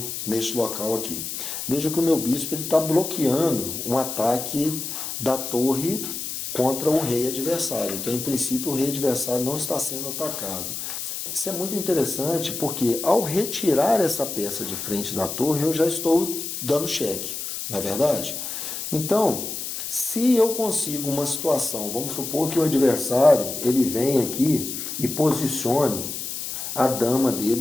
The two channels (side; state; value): left; noise; hiss, 6 dB below the sound